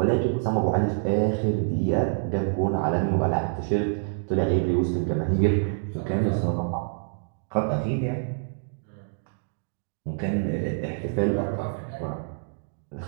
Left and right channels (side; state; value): left; silent; digital silence